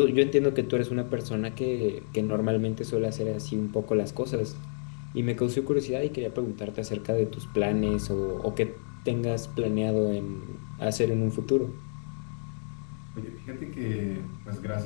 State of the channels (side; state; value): right; silent; digital silence